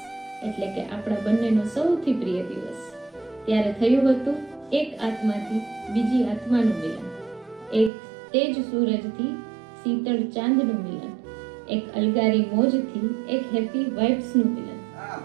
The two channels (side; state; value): left; drops out; at 7.9 s